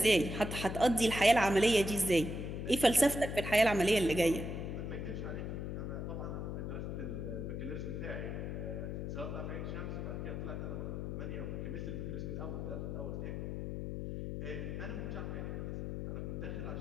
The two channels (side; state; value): left; noise; hum, 4 dB below the sound